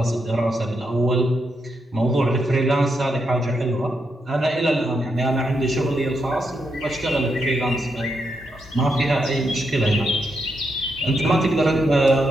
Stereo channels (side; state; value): both; normal; correlation 0.82